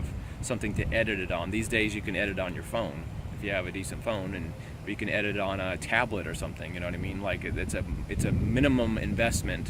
something to edit it on. These days you can edit on your phone if you have a decent phone, or you can edit it on a tablet or something, you know what I mean? Like it's a minimum investment,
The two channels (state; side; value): identical; both; correlation 1.00